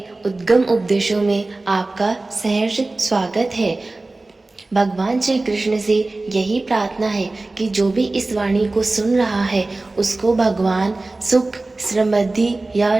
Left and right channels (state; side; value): quieter; left; 3.1 dB